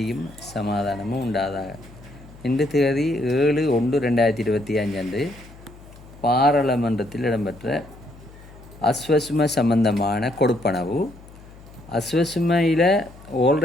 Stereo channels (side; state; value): left; noise; hum, 20 dB below the sound